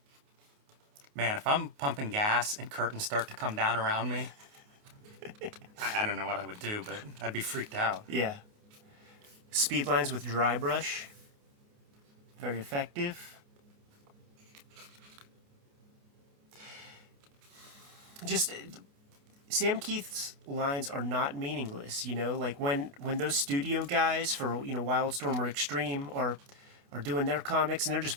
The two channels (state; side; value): late; left; 28 ms